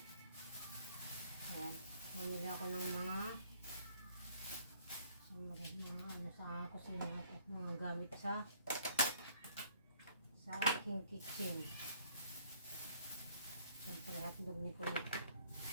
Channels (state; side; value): inverted; both; correlation -0.59